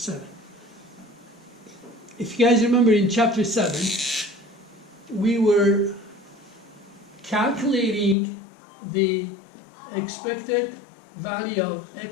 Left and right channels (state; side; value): drops out; right; at 8.2 s